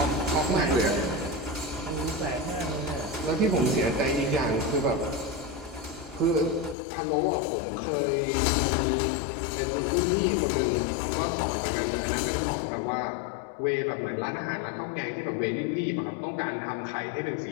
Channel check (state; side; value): drops out; right; at 6.8 s